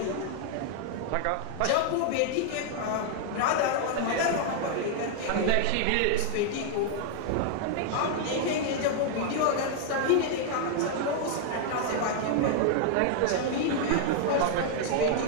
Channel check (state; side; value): different; both; correlation 0.00